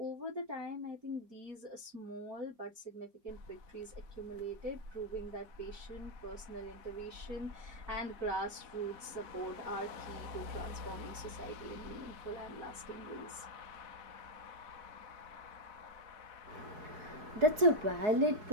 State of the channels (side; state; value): left; late; 4.7 ms